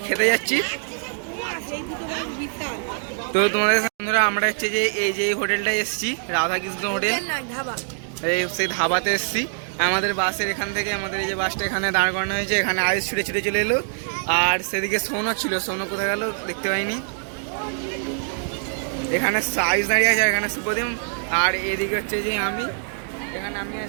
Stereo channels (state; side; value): silent; left; 63 dB below the other